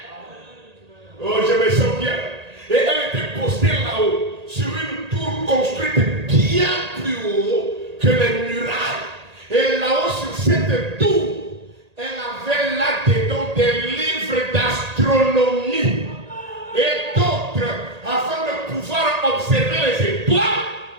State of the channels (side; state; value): left; late; 1.8 ms